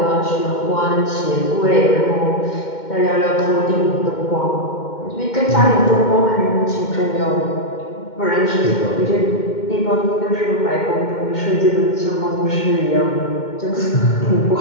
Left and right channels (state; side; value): late; right; 2.1 ms